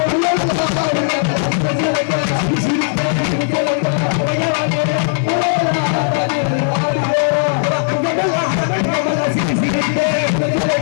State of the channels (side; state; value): right; silent; 68 dB below the other